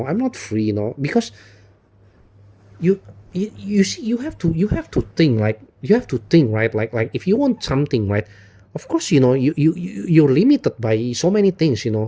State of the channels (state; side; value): identical; both; correlation 1.00